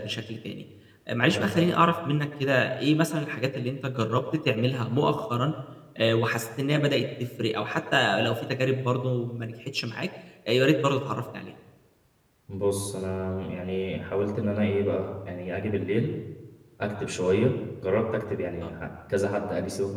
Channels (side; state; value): both; identical; correlation 1.00